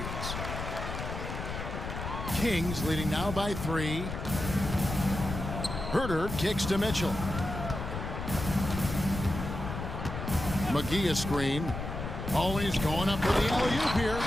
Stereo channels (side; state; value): left; noise; rumble, 6 dB below the sound